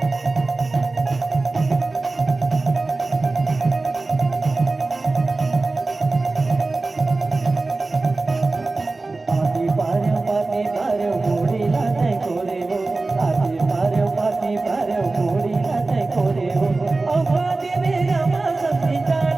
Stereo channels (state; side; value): quieter; left; 3.4 dB